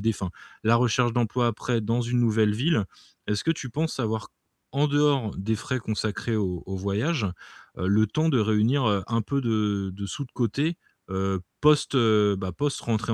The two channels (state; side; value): identical; both; correlation 1.00